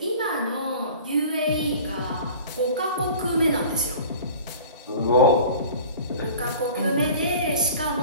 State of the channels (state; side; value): inverted; both; correlation -0.42